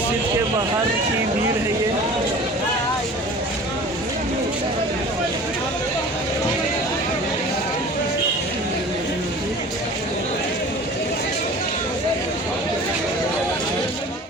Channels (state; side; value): normal; both; correlation 0.42